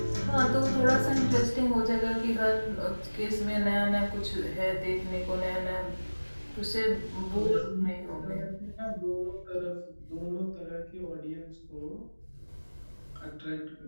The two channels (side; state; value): both; inverted; correlation -1.00